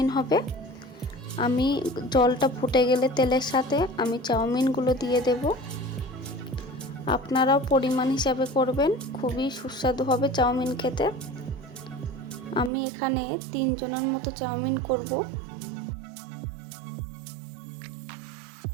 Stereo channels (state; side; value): drops out; left; at 12.7 s